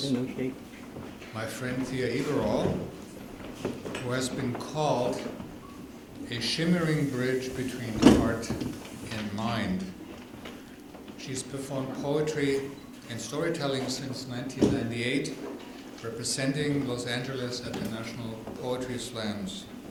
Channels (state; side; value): identical; both; correlation 1.00